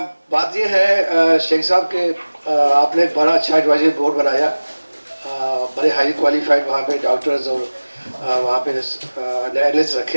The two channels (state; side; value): inverted; both; correlation -1.00